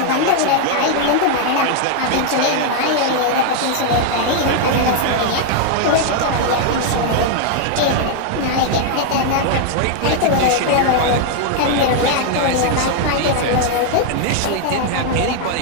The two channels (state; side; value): different; both; correlation 0.00